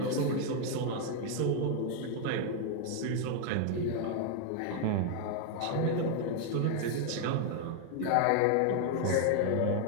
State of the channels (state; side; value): different; both; correlation 0.00